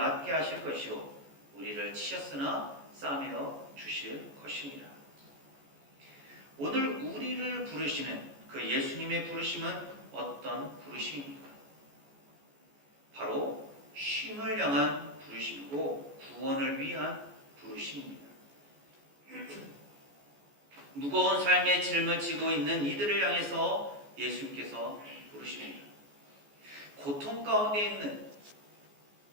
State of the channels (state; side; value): late; left; 14 ms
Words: 하실 것이요 우리를 치셨으나 싸매어 주실 것입니다. 오늘 우리를 부르시는 그 예수님의 부르심은 어떤 부르심입니까? 바로 쉼을 향한 부르심이고 구원을 위한 부르심입니다. 무거운 삶의 짐을 지고 있는 이들을 향해서 예수님께서 부르십니다. 고통 가운데